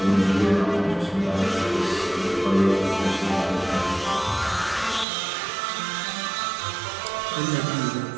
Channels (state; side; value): drops out; left; at 5.1 s